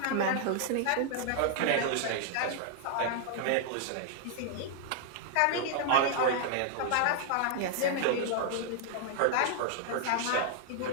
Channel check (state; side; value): different; both; correlation -0.01